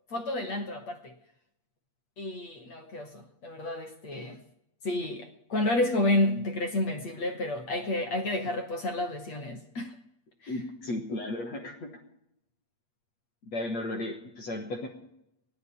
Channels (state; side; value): late; right; 8.5 ms